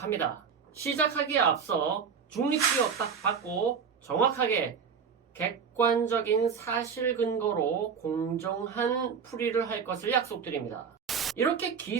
시작하기에 앞서 중립기업 딱 받고 정확하게 객관적인 사실 근거로 공정한 풀이를 할 것을 약속드립니다. 이렇게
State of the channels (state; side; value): quieter; left; 6.4 dB